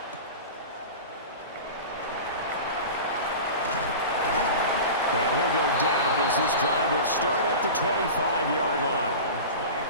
And he'll go down as this drive will start at the 25-yard line.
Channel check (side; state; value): both; inverted; correlation -0.32